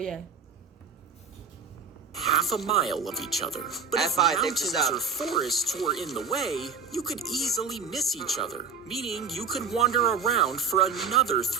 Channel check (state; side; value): quieter; left; 5.5 dB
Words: yeah. half a mile of each other. But if F5, take mountains this out. or forests were in the way, you could easily miss each other, meaning you could wander around for another